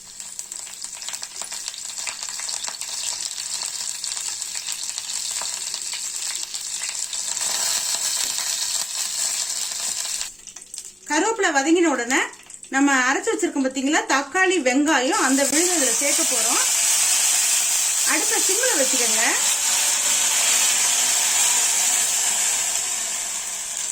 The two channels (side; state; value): both; normal; correlation 0.96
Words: கருவேப்பிலை வதங்கின உடனே நம்ம அரைச்சி வச்சிருக்கோம் பார்த்தீங்களா தக்காளி வெங்காயம், அந்த விழுதை இதில் சேர்க்க போகிறோம். அடுப்பை சிம்மில் வச்சுக்கோங்க.